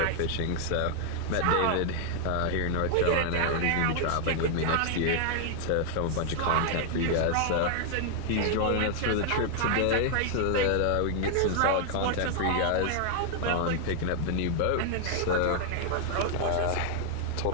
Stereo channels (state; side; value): different; both; correlation 0.00